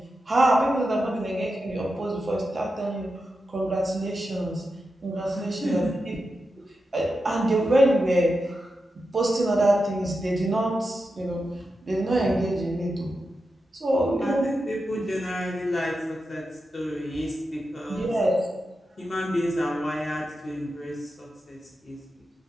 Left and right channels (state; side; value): normal; both; correlation 0.89